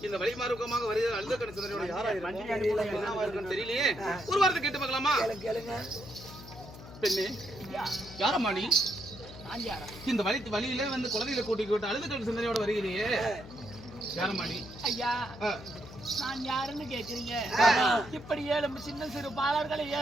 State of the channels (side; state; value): left; noise; hum, 15 dB below the sound